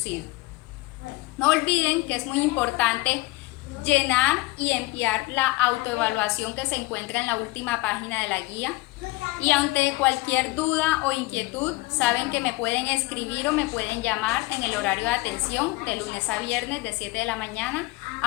No olviden que es muy importante llenar y enviar la autoevaluación que se encuentra en la última página de la guía. Y ante cualquier duda o inquietud, saben que me pueden escribir o me pueden llamar en el horario de atención de lunes a viernes de 7 de la mañana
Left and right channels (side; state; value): right; quieter; 21.6 dB